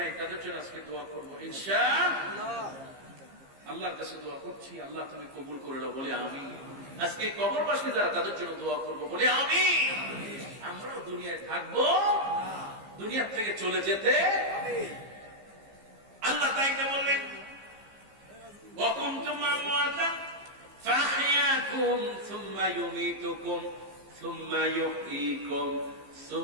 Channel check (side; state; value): left; late; 15 ms